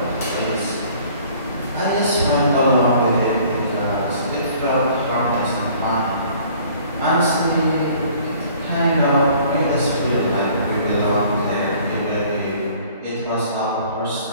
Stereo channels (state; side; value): inverted; both; correlation -0.54